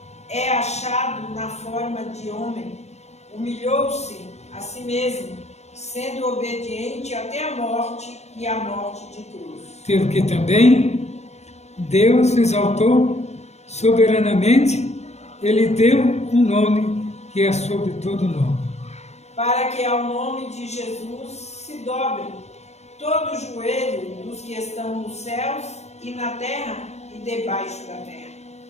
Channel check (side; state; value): right; late; 0.32 ms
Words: É achado na forma de homem, humilhou-se a si mesmo, sendo obediente até a morte e a morte de cruz. Pelo que também Deus exaltou soberanamente, Ele deu um nome que é sobre todo nome, para que ao nome de Jesus se dobre todo o joelho dos que estão nos céus e na terra e debaixo da terra.